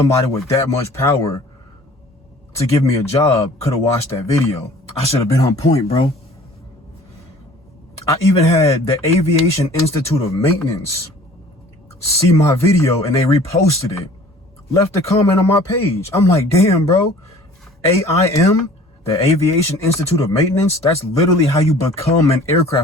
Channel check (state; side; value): normal; both; correlation 0.49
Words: with that much power to give me a job could have watched that video. I should have been on point, bro. I even had the Aviation Institute of Maintenance see my video and they reposted it, left a comment on my page. I'm like, damn, bro. AIM, the Aviation Institute of Maintenance, that's literally how you become an